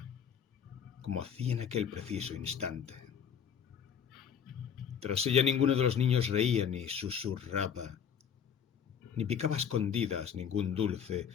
como hacía en aquel preciso instante. Tras ella ninguno de los niños reía ni susurraba, ni picaba a escondidas ningún dulce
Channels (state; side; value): quieter; right; 7.9 dB